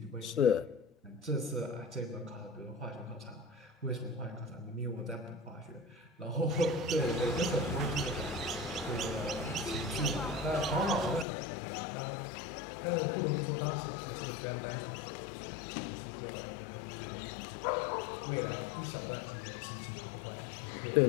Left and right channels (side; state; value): right; drops out; at 11.2 s